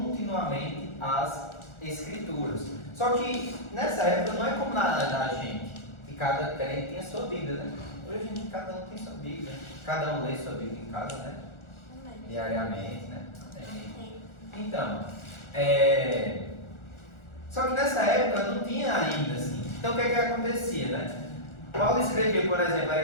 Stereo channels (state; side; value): late; right; 1.4 ms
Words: as Escrituras. Só que nessa época não é como na gente, que cada crente tinha sua Bíblia, né? Hoje cada um tem sua Bíblia, cada um lê sua Bíblia em casa, né? Diariamente, né? Então, só que nessa época não tinha ainda assim. Então o que é que acontecia, né? Paulo escreveu, por exemplo, a